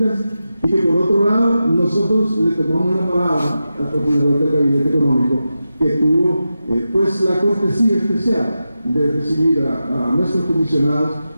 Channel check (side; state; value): both; inverted; correlation -0.91